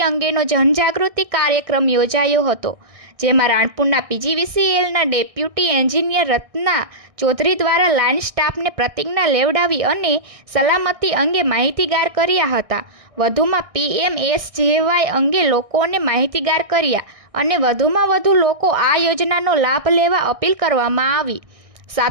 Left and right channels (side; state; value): left; late; 1.6 ms